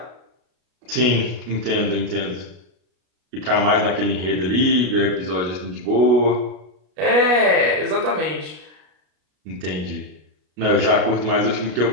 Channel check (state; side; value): late; left; 33 ms